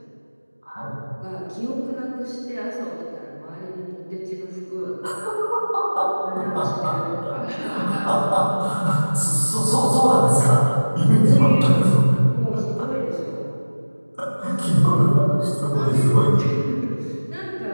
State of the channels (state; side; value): inverted; both; correlation -1.00